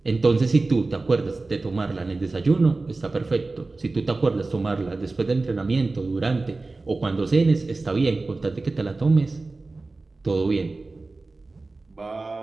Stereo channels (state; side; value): quieter; left; 3.4 dB